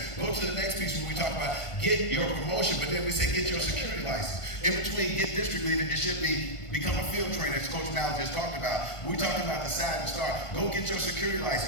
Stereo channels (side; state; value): right; late; 1.5 ms